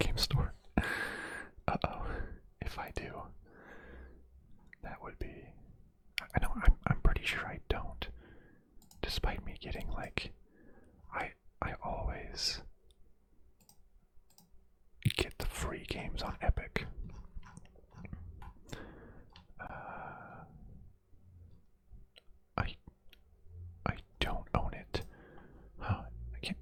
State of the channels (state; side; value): identical; both; correlation 1.00